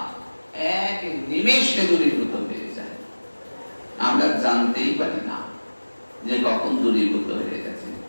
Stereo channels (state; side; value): inverted; both; correlation -1.00